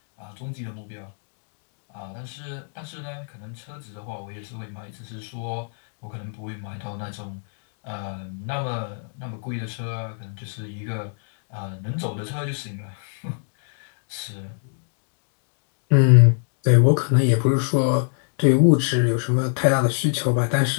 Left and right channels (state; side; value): silent; right; digital silence